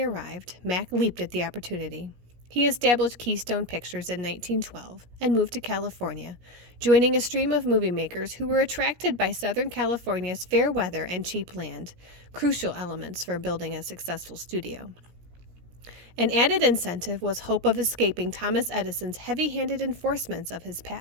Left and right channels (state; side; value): late; left; 17 ms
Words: arrived, Mack leaped at the opportunity. He established Keystone Pictures in 1912 and moved to California, joining a stream of movie makers who were attracted by Southern California's fair weather and cheap land, crucial elements for building a successful studio. An added incentive was hope of escaping Thomas Edison's heavy-handed enforcements of his